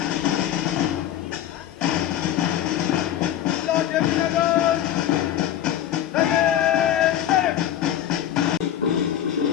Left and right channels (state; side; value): quieter; right; 11.2 dB